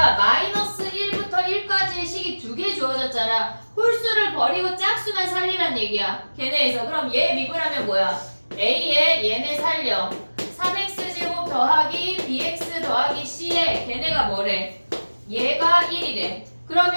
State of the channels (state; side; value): inverted; both; correlation -1.00